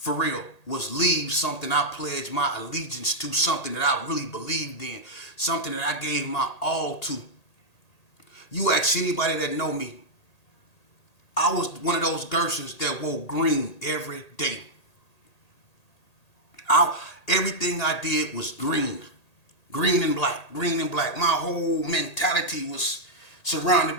real, was leave something I pledged my allegiance to, something that I really believed in, something that I gave my all to. You ask anybody that know me, I was one of those Gersons that wore green every day. Everything I did was green. Green and black, green and black. My whole mentality was surrounded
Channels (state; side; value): late; right; 1.8 ms